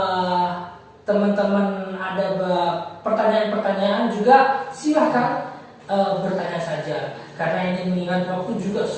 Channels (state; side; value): identical; both; correlation 1.00